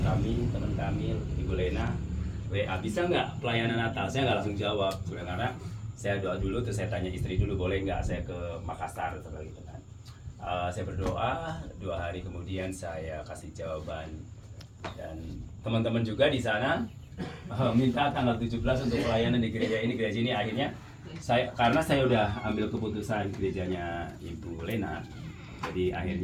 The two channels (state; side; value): identical; both; correlation 1.00